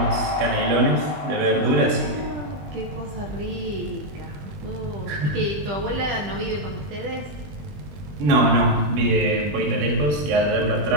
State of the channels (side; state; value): left; late; 21 ms